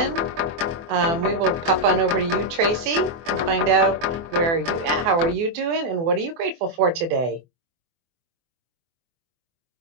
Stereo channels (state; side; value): late; left; 24 ms